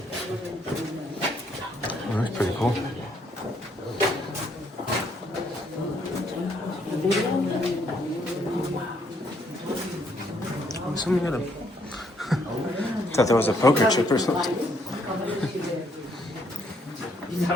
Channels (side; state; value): both; normal; correlation 0.70